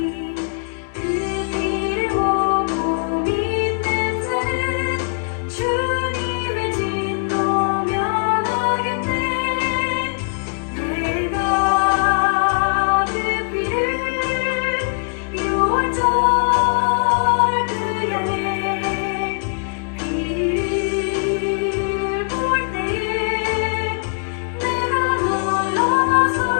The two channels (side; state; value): right; silent; 65 dB below the other